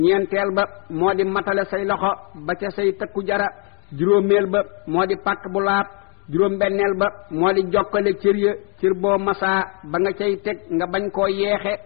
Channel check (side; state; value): right; quieter; 36.9 dB